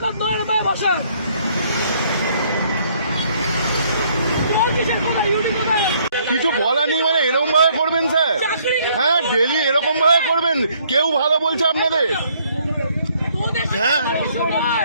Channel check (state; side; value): inverted; both; correlation -0.65